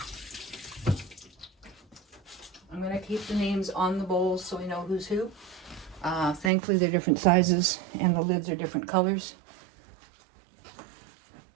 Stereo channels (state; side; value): drops out; left; at 6.5 s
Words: I'm going to keep the names on the bowls so we know who's who. Thankfully, they're different sizes and the lids are different colors.